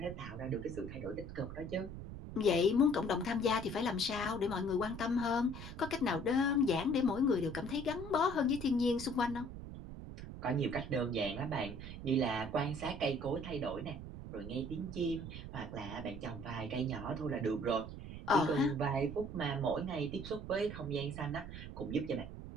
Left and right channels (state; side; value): noise; right; rumble, 10 dB below the sound